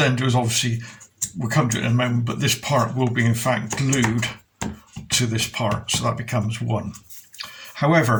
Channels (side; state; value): both; identical; correlation 1.00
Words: do is, obviously we'll come to it in a moment, but this part will be in fact glued to this part, so that becomes one.